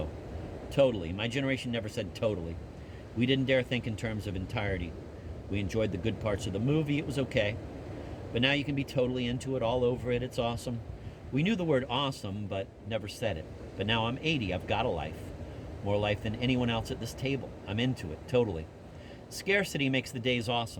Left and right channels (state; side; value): identical; both; correlation 1.00